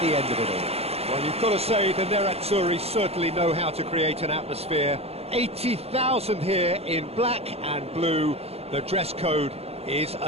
end of it all. Well, you've got to say the Nerazzurri certainly know how to create an atmosphere. 80,000 here in black and blue. The dress code is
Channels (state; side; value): late; left; 0.29 ms